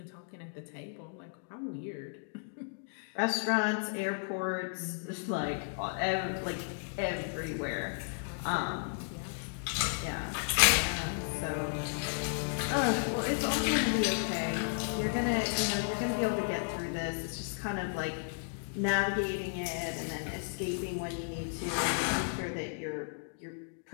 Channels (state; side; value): silent; right; digital silence